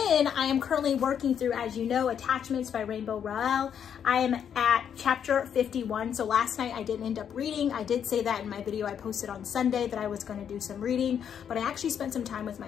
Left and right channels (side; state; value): right; quieter; 8.4 dB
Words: I am currently working through, as you know, Attachments by Rainbow Rowell. I am at chapter 51. So last night I didn't end up reading. I did say that in my video I posted on Sunday that I was going to do some reading, but I actually spent some time with